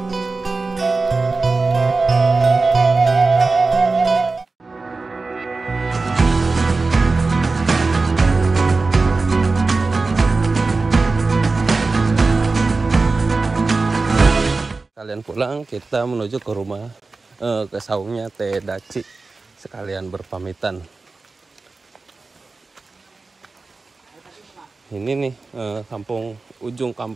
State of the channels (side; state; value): left; quieter; 3.8 dB